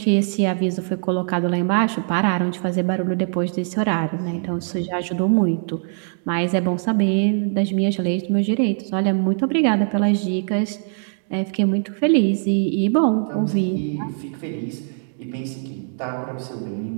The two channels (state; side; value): silent; left; 64 dB below the other